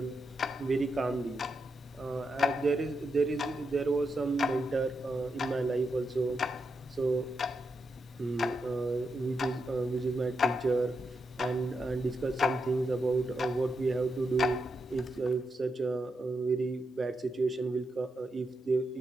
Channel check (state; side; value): normal; both; correlation 0.84